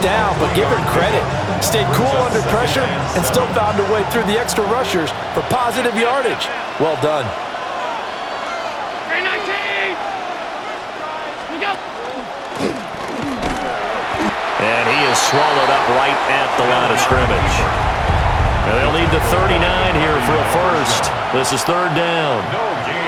down, but give him credit. Stayed cool under pressure and still found a way through the extra rushers for positive yardage. Well done. And he is swallowed up right at the line of scrimmage. And they'll need the 39 here for a first. This is third down. No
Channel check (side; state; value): both; identical; correlation 1.00